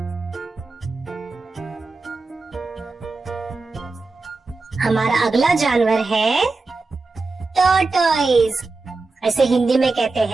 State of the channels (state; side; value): quieter; left; 3.7 dB